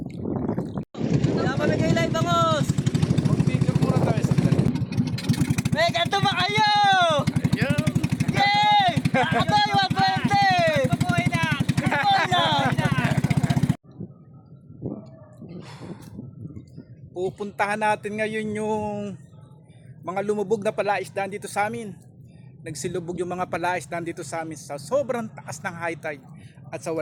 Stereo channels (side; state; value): both; identical; correlation 1.00